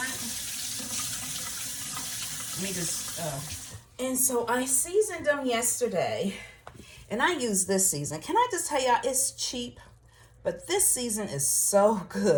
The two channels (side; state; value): both; identical; correlation 1.00